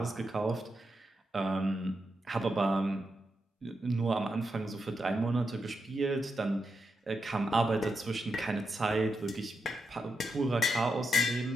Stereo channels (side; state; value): both; normal; correlation 0.85